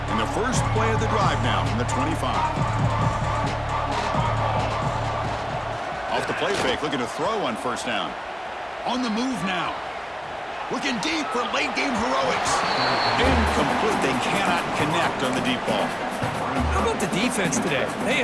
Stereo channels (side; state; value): both; identical; correlation 1.00